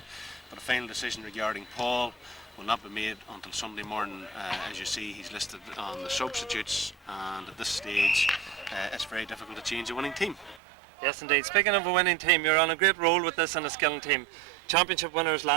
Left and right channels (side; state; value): left; drops out; at 10.6 s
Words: but a final decision regarding Paul will not be made until Sunday morning. As you see, he's listed on the substitutes, and at this stage it's very difficult to change a winning team. Yes, indeed. Speaking of a winning team, you're on a great roll with this Enniskillen team. Championship winners